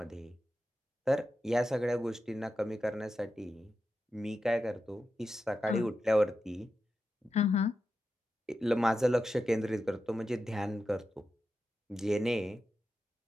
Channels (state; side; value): normal; both; correlation 0.90